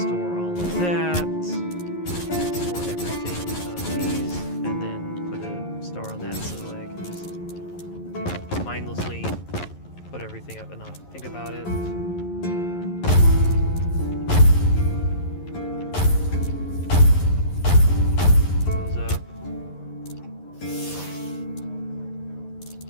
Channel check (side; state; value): right; late; 11 ms